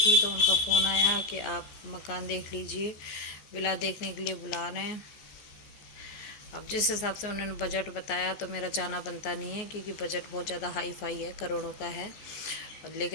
तो उनका फ़ोन आया कि आप मकान देख लीजिए, विला देखने के लिए बुला रहे हैं। अब जिस हिसाब से उन्होंने बजट बताया तो मेरा जाना बनता नहीं है, क्योंकि बजट बहुत ज़्यादा हाई फाई है, करोड़ों का है।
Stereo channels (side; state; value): right; late; 14 ms